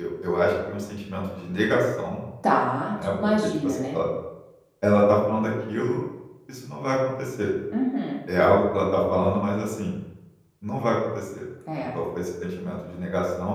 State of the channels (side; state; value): both; identical; correlation 1.00